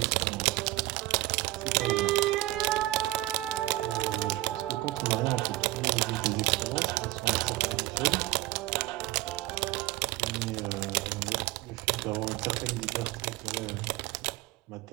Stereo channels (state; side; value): quieter; left; 17.6 dB